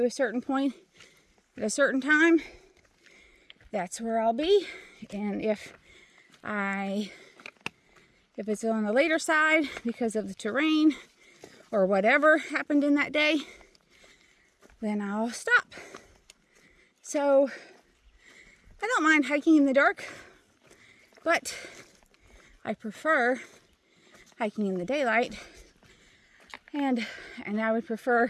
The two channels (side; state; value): both; identical; correlation 1.00